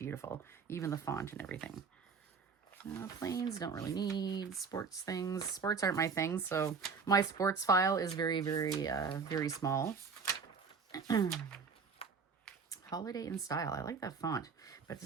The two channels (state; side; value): quieter; left; 5.3 dB